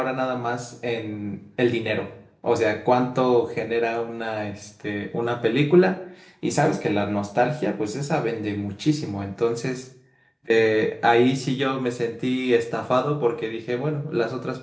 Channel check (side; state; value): both; identical; correlation 1.00